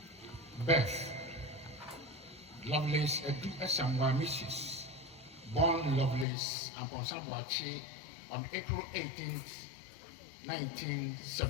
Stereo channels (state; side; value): drops out; right; at 6.2 s